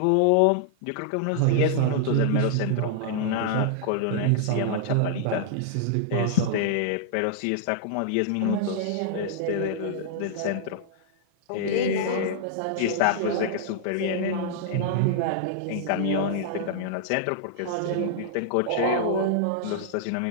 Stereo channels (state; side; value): different; both; correlation -0.01